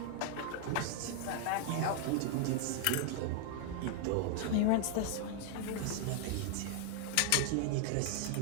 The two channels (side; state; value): both; different; correlation 0.00